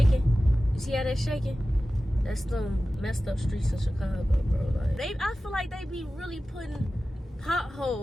You see how that's shaking? That's them messed up streets in Chicago, bro. Like, I feel like they be really putting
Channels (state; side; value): normal; both; correlation 0.95